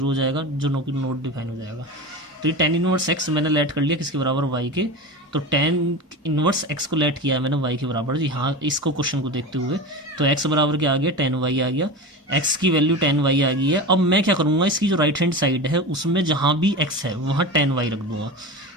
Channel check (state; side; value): normal; both; correlation 0.27